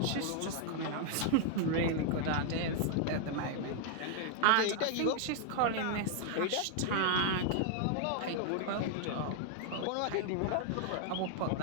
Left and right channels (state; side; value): different; both; correlation 0.00